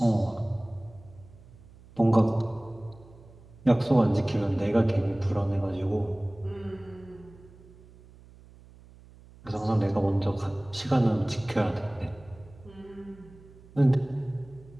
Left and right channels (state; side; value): noise; right; hum, 23 dB below the sound